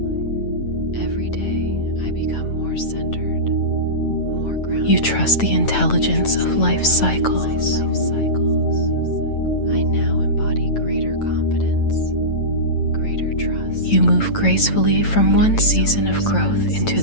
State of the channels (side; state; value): right; late; 9.0 ms